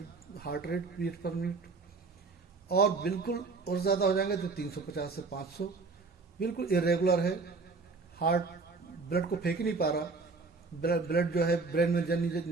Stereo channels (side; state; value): left; quieter; 4.1 dB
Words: heart rate beat per minute. और बिल्कुल और ज़्यादा हो जाएंगे तो 350 से 500। बिल्कुल इरेगुलर है, हार्ट ब्लड को फेंक ही नहीं पा रहा, ब्लड जो है ब्रेन में